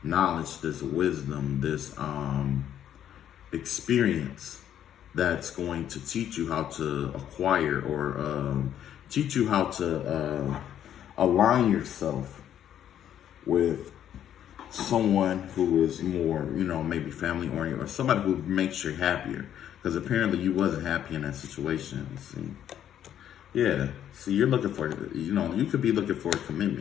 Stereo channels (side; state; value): right; quieter; 10.4 dB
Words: knowledge, this wisdom, this experience that's going to teach you how to acquire or teach you how to align yourself with someone who is more, you know, maybe family oriented, or somebody who makes you happier. Because apparently you wasn't happy in that situation. See, yeah. See, you're looking for, you know, you could be looking for a